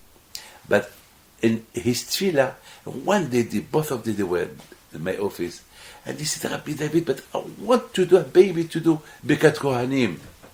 But in his tefillah, one day, both of them, they were in my office, and he said, Rabbi David, but I want to do a baby, to do Birkat Kohanim.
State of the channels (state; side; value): identical; both; correlation 1.00